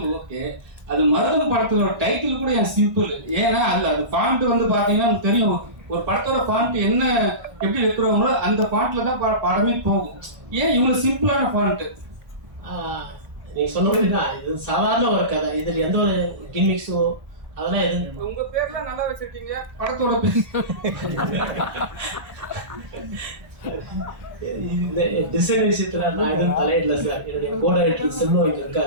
ஓகே. அது மருத படத்தோட டைட்டில் கூட என் சிம்பிள். ஏன்னா அது ஃபாண்ட் வந்து பார்த்தீங்கன்னா எனக்கு தெரியும், ஒரு படத்தோட ஃபாண்ட் என்ன எப்படி வைக்கிறவங்களோ அந்த ஃபாண்ட்ல தான் படமே போகும். ஏன் இவங்க சிம்பிளான ஃபாண்ட்? நீங்க சொன்ன மாதிரி தான், இது சாதாரண ஒரு கதை. இதில் எந்த ஒரு கிமிக்ஸோ அதெல்லாம் எதுவும். உங்க பேர்லாம் நல்லா வச்சிருக்கீங்க, படத்தோட பேர் இந்த டிசைன் விஷயத்துல நான் எதுவும் தலையிடல சார். என்னுடைய கோடைரக்டர் செல்வம் இங்க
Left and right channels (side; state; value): left; late; 1.3 ms